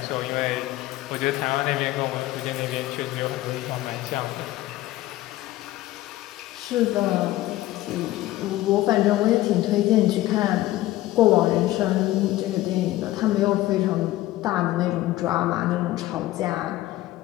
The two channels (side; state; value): right; quieter; 16.1 dB